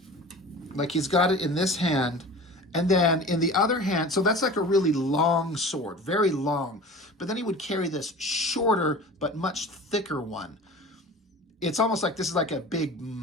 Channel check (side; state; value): both; normal; correlation 0.38